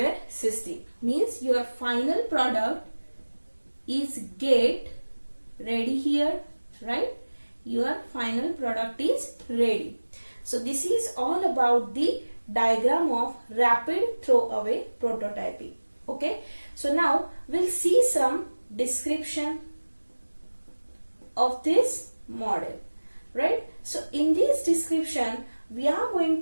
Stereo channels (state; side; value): inverted; both; correlation -1.00